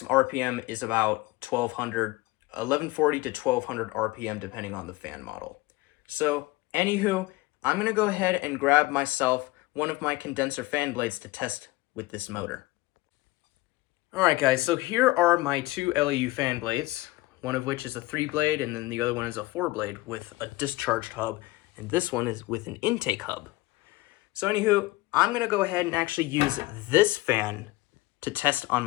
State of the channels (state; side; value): quieter; right; 20.2 dB